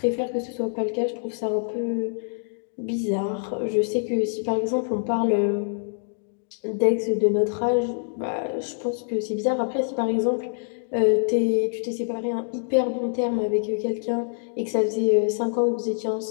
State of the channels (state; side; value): silent; right; digital silence